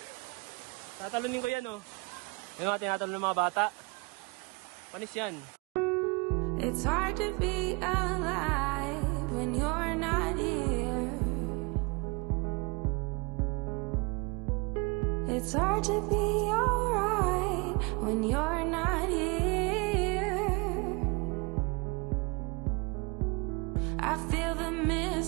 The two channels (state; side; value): quieter; left; 28.8 dB